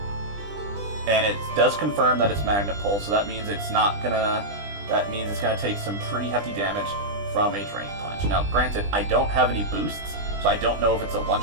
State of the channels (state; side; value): late; left; 20 ms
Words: And it does confirm that it's Magnet Pull, so that means it's not gonna. That means it's gonna take some pretty hefty damage from a Drain Punch. Now, granted, I don't have any boosts, so I don't know if it's a